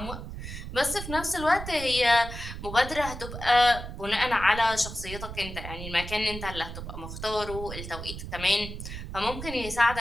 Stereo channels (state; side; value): noise; right; rumble, 9 dB below the sound